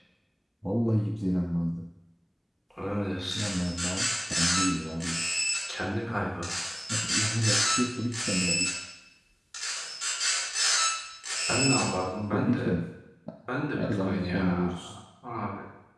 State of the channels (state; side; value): identical; both; correlation 1.00